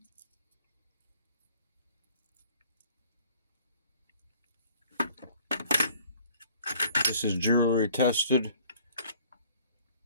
This is jewelry tested,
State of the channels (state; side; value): inverted; both; correlation -0.55